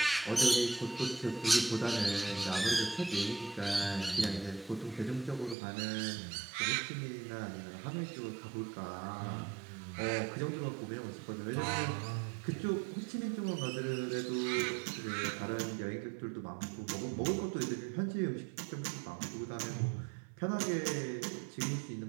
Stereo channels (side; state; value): left; drops out; at 5.6 s